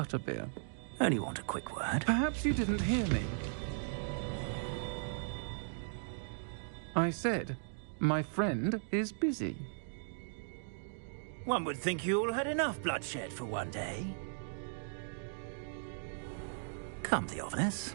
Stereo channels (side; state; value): left; silent; digital silence